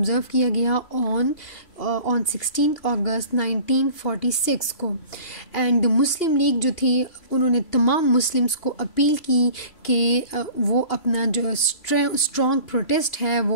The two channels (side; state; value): right; late; 2.8 ms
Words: किया गया ऑन 16 अगस्त 1946 को. एंड मुस्लिम लीग जो थी उन्होंने तमाम मुस्लिम्स को अपील की कि वो अपना जो स्ट्रॉन्ग प्रोटेस्ट है